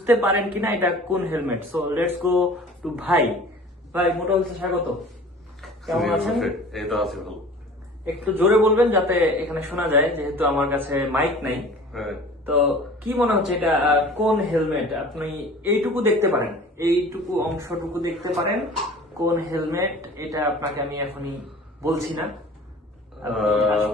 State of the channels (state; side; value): normal; both; correlation 0.44